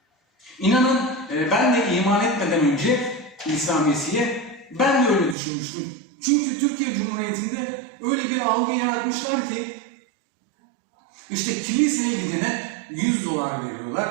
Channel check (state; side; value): drops out; left; at 5.4 s